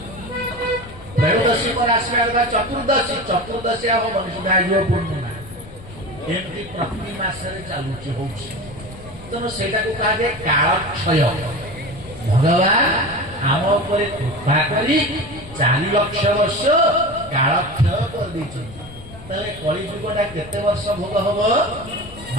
त्रयोदशी पर आसबा चतुर्दशी हबनी सुधा आइयो पूर्णिमा एमती प्रति मासरे चालुची होची तनो सेटा को कहा जे काल क्षय भगवान आम उपरे कृपा करी 4 लाख वर्ष काल क्षय कर दी कलिजुगटा केते वर्ष भोग हम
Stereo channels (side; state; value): left; noise; rumble, 17 dB below the sound